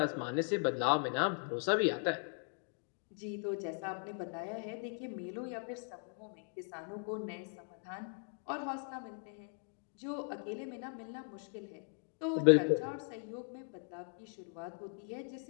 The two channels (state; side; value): silent; right; 52 dB below the other